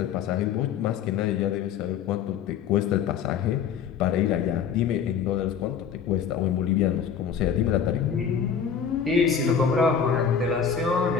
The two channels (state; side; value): quieter; right; 7.4 dB